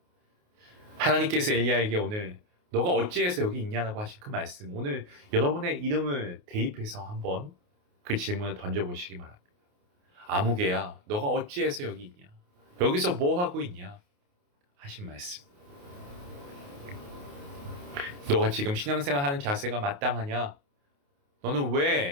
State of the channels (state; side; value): late; left; 28 ms